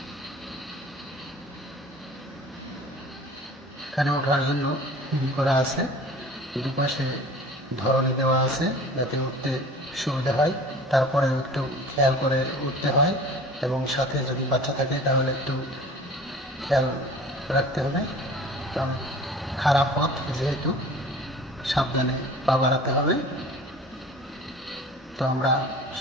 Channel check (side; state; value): both; normal; correlation 0.43